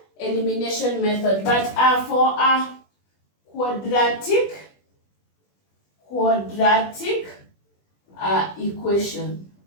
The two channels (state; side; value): late; right; 20 ms